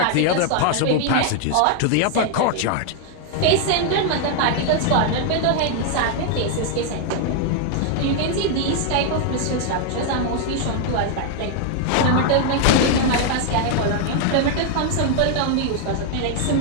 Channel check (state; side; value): different; both; correlation 0.00